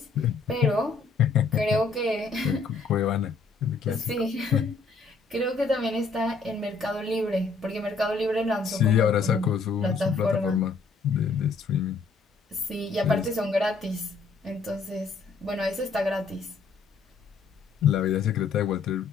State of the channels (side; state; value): right; quieter; 4.4 dB